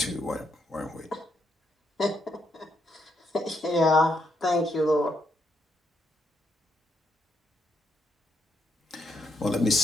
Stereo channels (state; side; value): normal; both; correlation 0.77